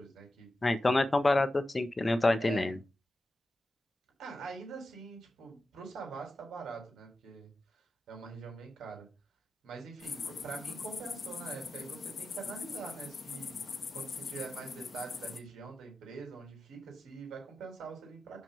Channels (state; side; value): normal; both; correlation 0.92